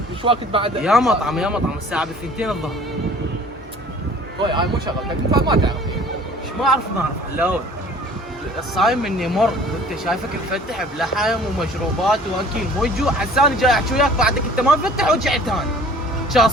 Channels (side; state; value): both; normal; correlation 0.50